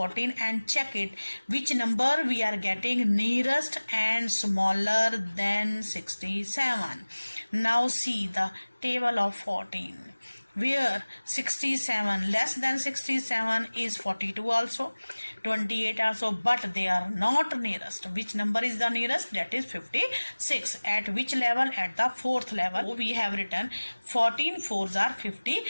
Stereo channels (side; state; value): both; inverted; correlation -1.00